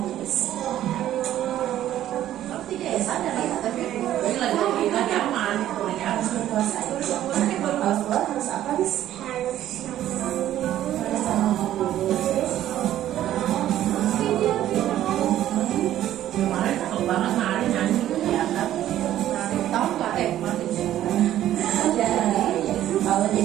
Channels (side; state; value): left; quieter; 12.5 dB